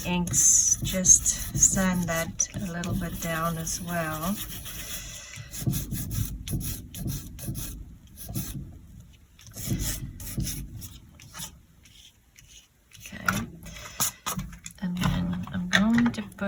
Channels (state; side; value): identical; both; correlation 1.00